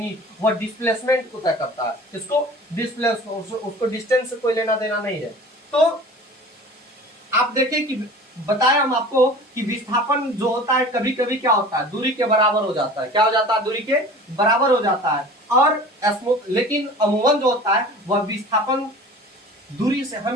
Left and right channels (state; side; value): normal; both; correlation 0.41